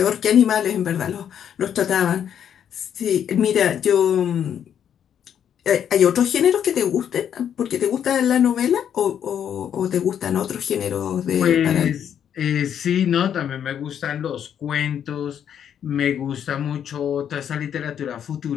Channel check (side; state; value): right; quieter; 9.0 dB